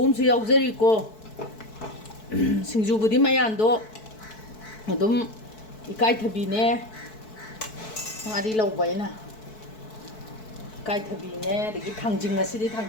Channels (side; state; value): right; late; 4.6 ms